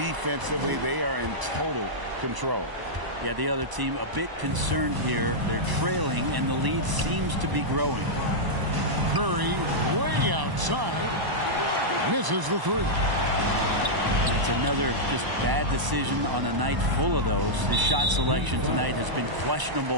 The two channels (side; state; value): left; late; 1.0 ms